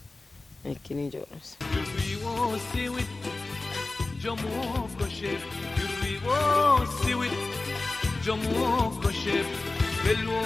اكيني جورس جمو كشف يريبو سويت جمو كشف بلو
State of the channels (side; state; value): right; quieter; 3.3 dB